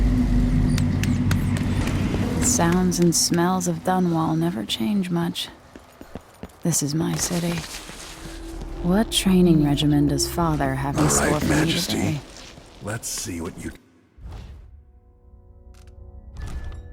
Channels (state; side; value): identical; both; correlation 1.00